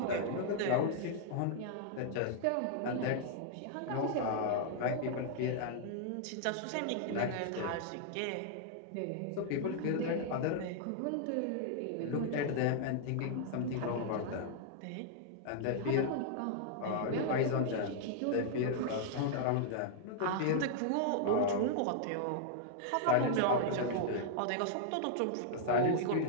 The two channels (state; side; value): different; both; correlation -0.01